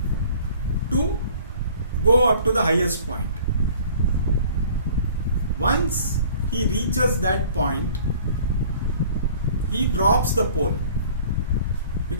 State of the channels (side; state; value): both; inverted; correlation -0.51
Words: to go up to the highest point. Once he reaches that point, he drops the pole.